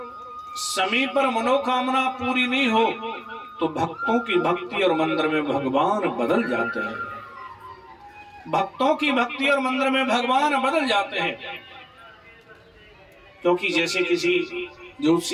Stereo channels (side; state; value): both; identical; correlation 1.00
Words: समय पर मनोकामना पूरी नहीं हो तो भक्तों की भक्ति और मंदिर में भगवान बदल जाते हैं। भक्तों की भक्ति और मंदिर में भगवान बदल जाते हैं। क्योंकि जैसे किसी